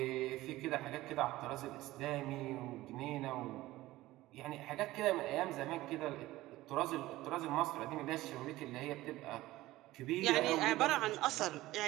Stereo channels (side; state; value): left; quieter; 17.1 dB